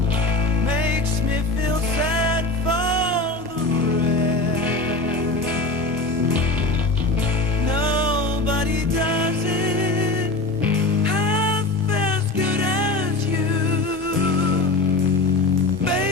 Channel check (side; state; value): right; quieter; 3.2 dB